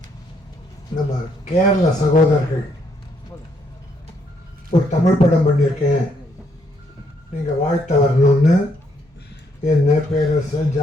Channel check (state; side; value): normal; both; correlation 0.72